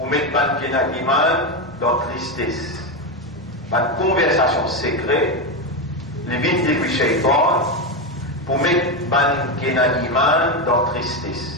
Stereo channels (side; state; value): both; normal; correlation 0.11